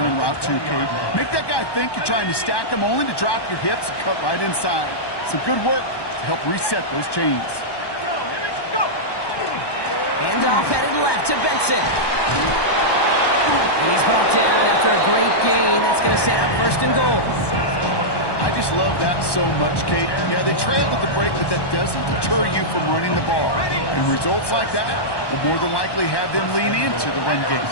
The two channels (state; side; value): late; right; 1.1 ms